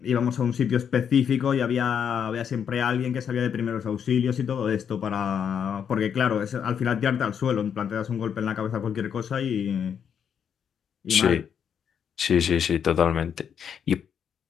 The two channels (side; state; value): right; quieter; 7.9 dB